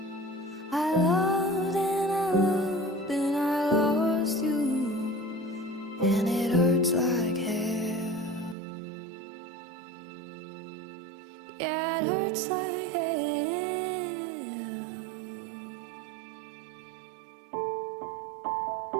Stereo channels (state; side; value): drops out; left; at 8.6 s